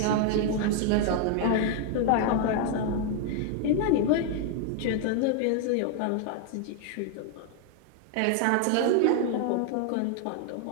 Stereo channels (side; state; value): both; different; correlation 0.00